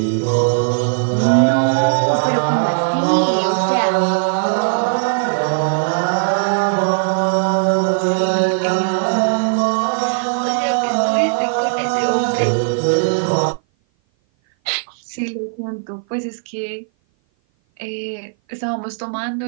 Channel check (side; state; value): left; silent; 57 dB below the other